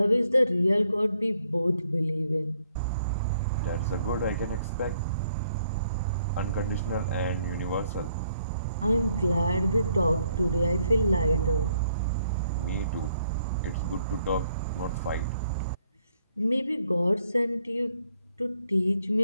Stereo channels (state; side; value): inverted; both; correlation -0.70